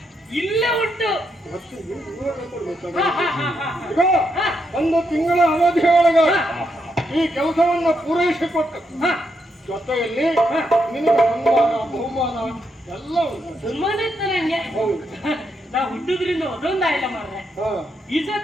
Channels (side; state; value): both; normal; correlation 0.80